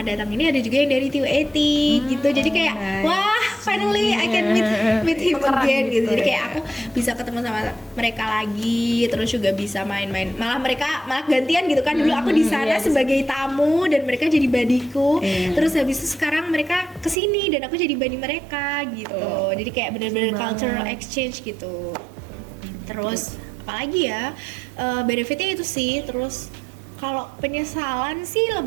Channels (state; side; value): drops out; left; at 17.2 s